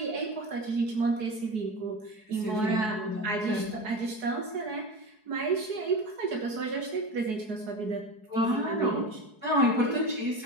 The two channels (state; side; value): late; left; 4.7 ms